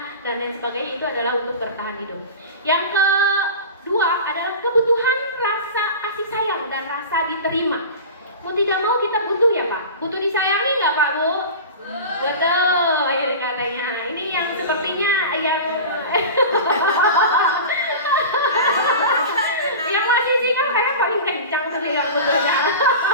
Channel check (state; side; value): inverted; both; correlation -0.31